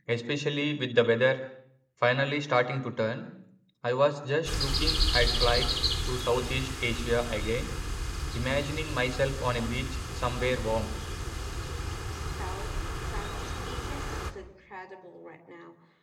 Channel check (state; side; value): identical; both; correlation 1.00